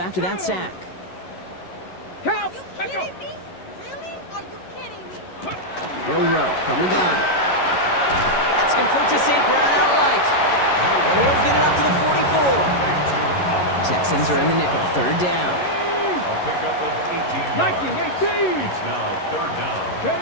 that sack. Count. Are you kidding me? Really? Are you kidding me? Monroe from the gun. That's complete to St. Brown outright. And he'll get it up to the 44. Texans are in the nickel. Third down. A pickup of 18 yards. 18. It's now third down.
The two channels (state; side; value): late; right; 11 ms